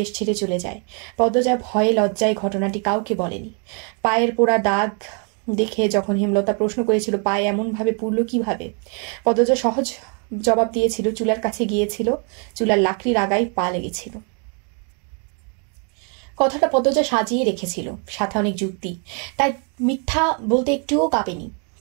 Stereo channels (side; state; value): left; quieter; 39.2 dB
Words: ছেড়ে চলে যায়। পদ্মজা ভয়ে লজ্জায় ঘটনাটি কাউকে বলেনি। পায়ের পোড়া দাগ দেখে যখন হেমলতা প্রশ্ন করেছিল পায়ে এমনভাবে পুড়ল কিভাবে, পদ্মজা সহজ জবাব দিয়েছিল, চুলার কাছে গিয়েছিল, চুলার লাকড়ির আগায় পা লেগেছিল। কথাটা পদ্মজা সাজিয়ে রেখেছিল, সাথে অনেক যুক্তি, তাই মিথ্যা বলতে একটুও কাঁপেনি।